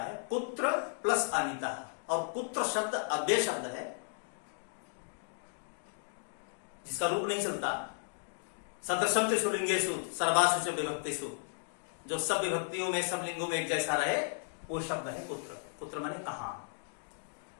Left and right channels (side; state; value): right; silent; digital silence